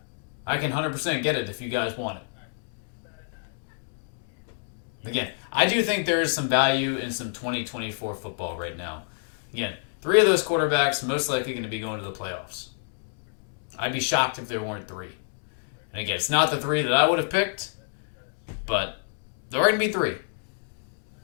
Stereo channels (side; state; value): right; silent; digital silence